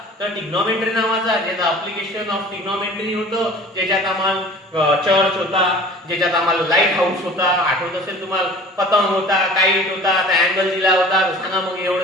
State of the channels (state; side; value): normal; both; correlation 0.44